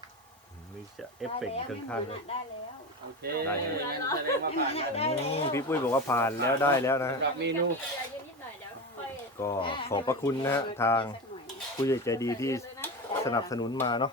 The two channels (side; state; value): both; normal; correlation 0.23